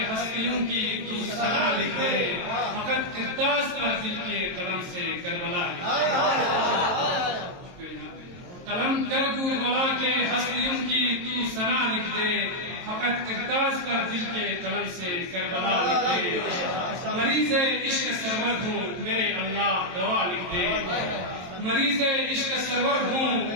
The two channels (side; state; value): left; late; 23 ms